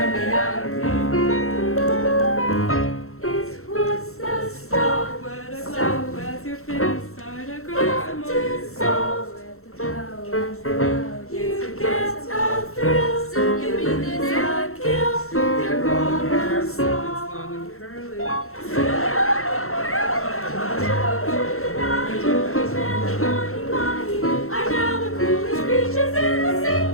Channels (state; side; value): late; right; 0.63 ms